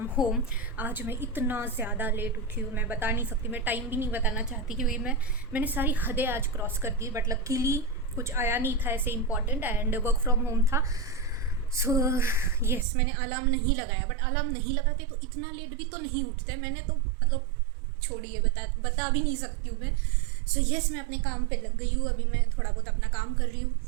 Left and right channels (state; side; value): drops out; left; at 12.9 s